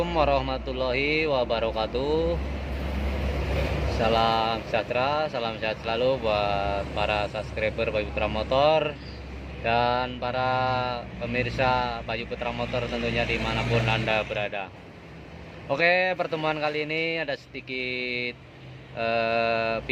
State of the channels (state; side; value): identical; both; correlation 1.00